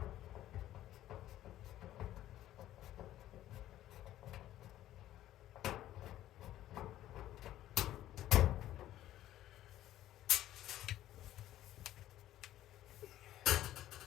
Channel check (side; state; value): right; quieter; 13.4 dB